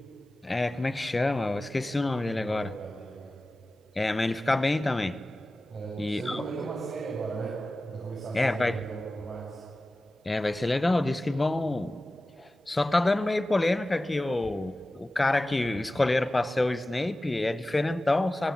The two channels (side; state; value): both; normal; correlation 0.96